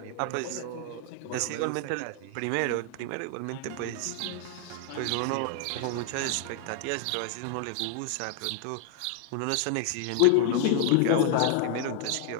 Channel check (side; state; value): both; different; correlation 0.00